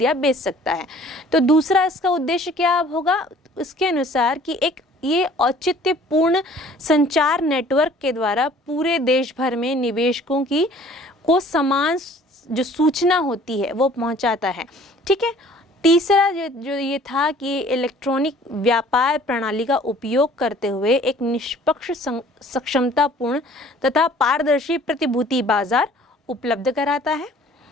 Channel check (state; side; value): normal; both; correlation 0.53